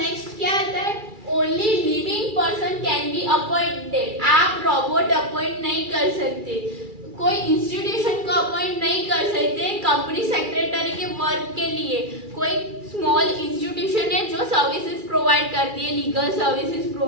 क्या आता है, only living person can be appointed. आप रोबोट अपॉइंट नहीं कर सकते, कोई इंस्टीट्यूशन को अपॉइंट नहीं कर सकते कंपनी सेक्रेटरी के वर्क के लिए। कोई स्मॉल इंस्टीट्यूशन है जो सर्विसेज प्रोवाइड करती है, लीगल सर्विसेज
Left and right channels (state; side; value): late; left; 2.3 ms